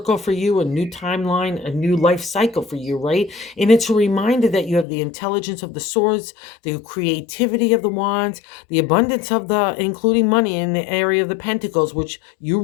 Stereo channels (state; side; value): drops out; right; at 4.9 s